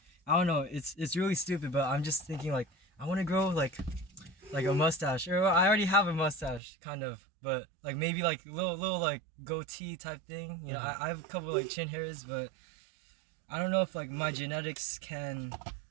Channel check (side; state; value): left; drops out; at 6.6 s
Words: I don't know, it's really stupid, but I'm just thinking like I want to grow like a mustache, or I already have a mustache kind of, but like maybe like little like goatee type thing. You know, I have a couple like chin hairs, but I don't know if like my genetics can